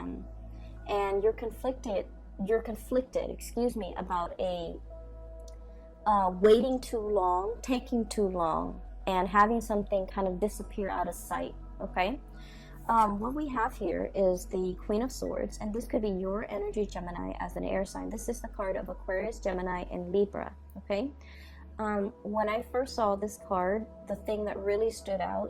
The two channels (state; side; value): identical; both; correlation 1.00